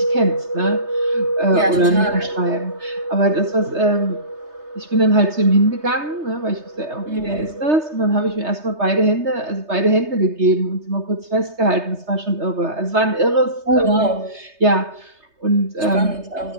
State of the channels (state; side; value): late; left; 3.3 ms